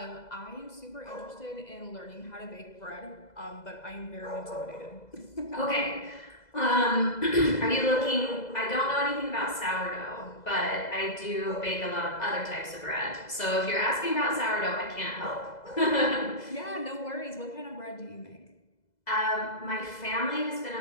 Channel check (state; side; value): late; right; 2.0 ms